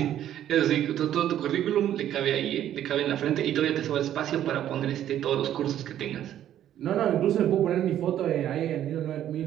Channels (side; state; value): left; quieter; 11.3 dB